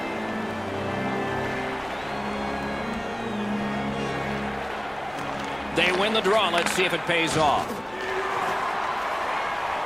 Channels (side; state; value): right; noise; rumble, 24 dB below the sound